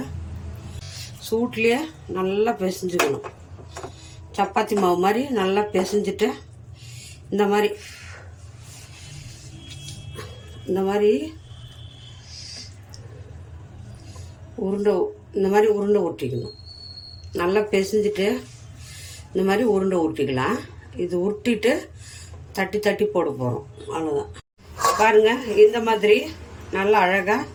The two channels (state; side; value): identical; both; correlation 1.00